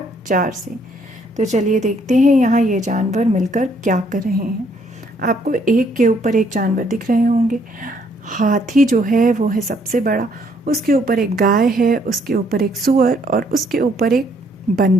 4 से। तो चलिए देखते हैं यहाँ ये जानवर मिलकर क्या कर रहे हैं। आपको एक के ऊपर एक जानवर दिख रहे होंगे। हाथी जो है वो है सबसे बड़ा, उसके ऊपर एक गाय है, उसके ऊपर एक सूअर और उसके ऊपर एक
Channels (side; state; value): both; normal; correlation 0.67